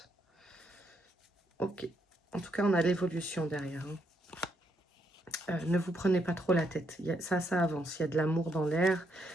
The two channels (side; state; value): both; normal; correlation 0.76